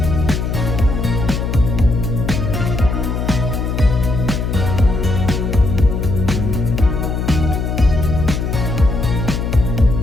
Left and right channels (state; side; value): noise; left; hum, 1 dB below the sound